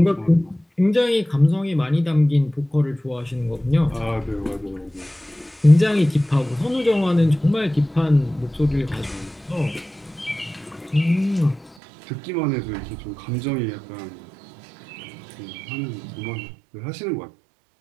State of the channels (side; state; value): left; drops out; at 11.8 s